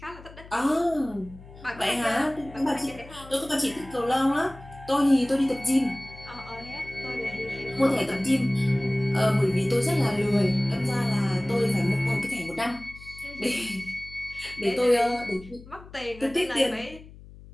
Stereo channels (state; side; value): noise; left; hum, 19 dB below the sound